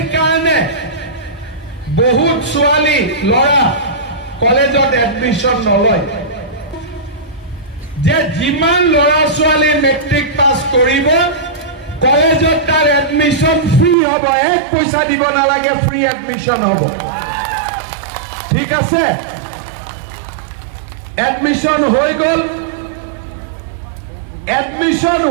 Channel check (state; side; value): drops out; left; at 14.0 s